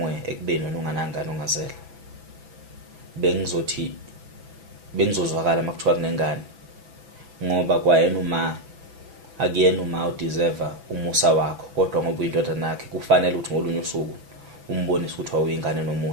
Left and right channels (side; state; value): left; late; 6.0 ms